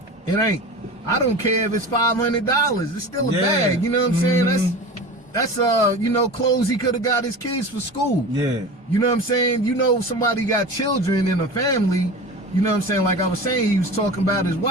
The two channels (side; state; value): both; normal; correlation 0.33